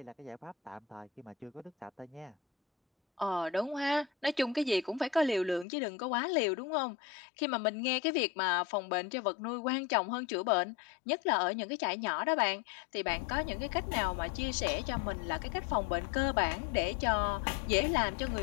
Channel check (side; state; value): right; drops out; at 5.7 s